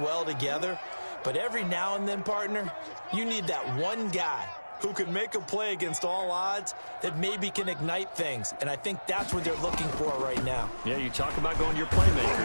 well together. But every now and then, partner, you need that one guy who can make a play against all odds that maybe can ignite things. And I think that's what they're looking for right now. Yeah, you talk about going to your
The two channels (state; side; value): inverted; both; correlation -1.00